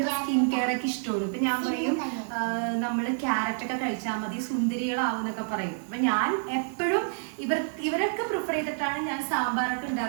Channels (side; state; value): left; silent; digital silence